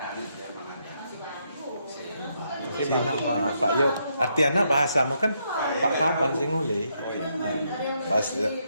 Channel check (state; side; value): inverted; both; correlation -0.77